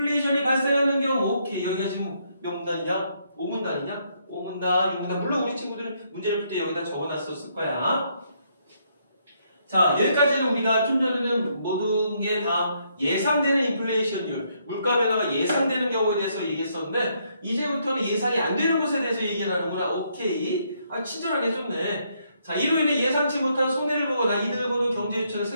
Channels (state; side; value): inverted; both; correlation -0.73